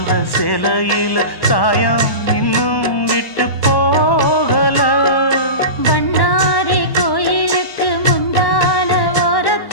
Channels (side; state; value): right; late; 1.1 ms